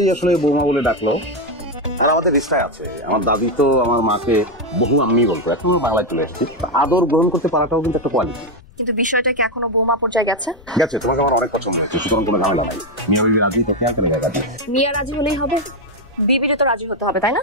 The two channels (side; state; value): left; noise; rumble, 24 dB below the sound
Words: আসলে বৌমা বলে ডাকলো। আর আমাদের রিস্তায় আছে, আমার দাদি তো আমার মাকে বহু আম্মি বলতো, এখন বাংলায় চলে এসেছি। আদর গ্রহণ করতে পারাটাও কিন্তু একটা কোয়ালিটি। কিন্তু বিষয়টা কি এখনো বৌমা পর্যায়ে গেছে? গেছে, তোমাকে আমার অনেক পছন্দ হয়েছে, সুতরাং কোনো ঝামেলা নাই। মিয়া বিবি রাজি, তো কেন কেন জায়গা দিয়ে মিয়া রাজি হলেই হবে? বিবিরও তো রাজি হতে হবে, তাই না?